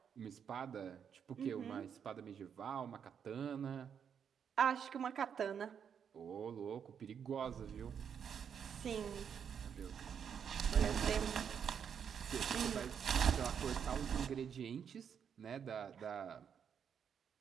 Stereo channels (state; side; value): quieter; left; 7.6 dB